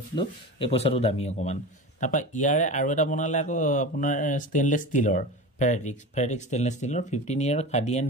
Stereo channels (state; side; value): normal; both; correlation 0.29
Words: দিলোঁ, এই পইচাটো দামী অকণমান। তাৰপৰা ইয়াৰে আৰু এটা বনালে আকৌ আপোনাৰ ষ্টেইনলেছ ষ্টীলৰ, ফেৰেটিক ষ্টেইনলেছ ষ্টীলৰ 15 year khadi and